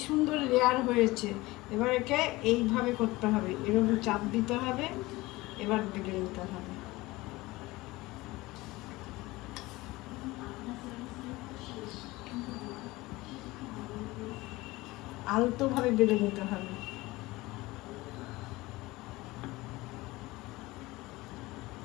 সুন্দর লেয়ার হয়েছে। এবার একে এইভাবে করতে হবে, এরকম চাপ দিতে হবে, এবার বেলে নিতে হবে। আলতোভাবে বেলে নিতে হবে।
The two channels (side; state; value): right; quieter; 20.4 dB